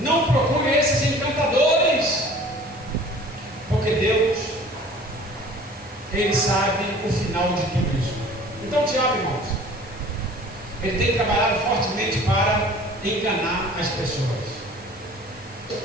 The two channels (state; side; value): normal; both; correlation 0.47